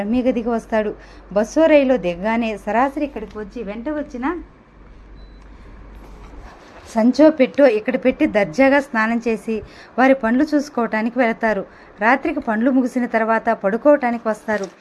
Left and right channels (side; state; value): both; identical; correlation 1.00